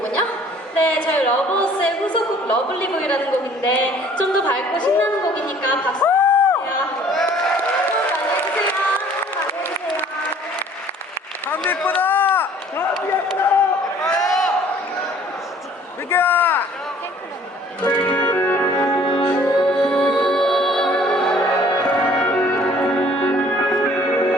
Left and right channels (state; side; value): normal; both; correlation 0.54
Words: 네, 저희 러버스의 후속곡 러블리보이라는 곡인데 좀 더 밝고 신나는 곡이니까 박수 주세요. 많이 해주세요. 많이 해주세요. 감기 예쁘다! 감기 예쁘다! 민규야!